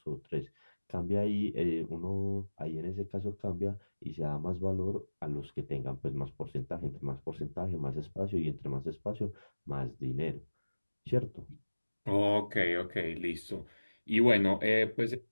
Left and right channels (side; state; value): both; inverted; correlation -1.00